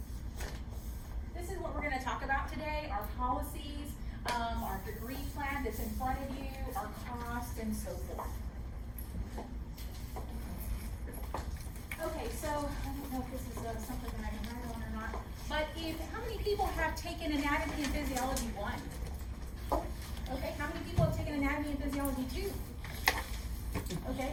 This is what we're going to talk about today, our policies, our degree plan that's in front of you, our cost, and so forth. Okay, so I don't know if this is something that I can write on or not, but how many people have taken anatomy and physiology 1? Okay, how many people have taken anatomy and physiology 2? Okay,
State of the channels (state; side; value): identical; both; correlation 1.00